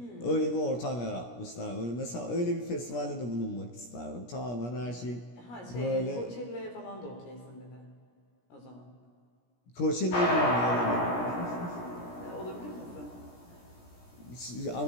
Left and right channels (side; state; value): right; late; 17 ms